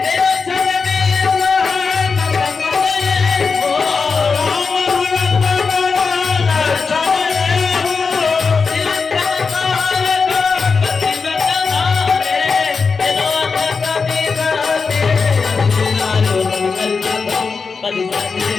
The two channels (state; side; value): quieter; right; 4.9 dB